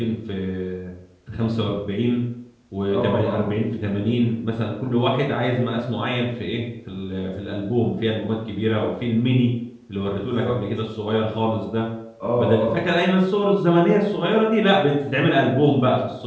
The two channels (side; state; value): both; identical; correlation 1.00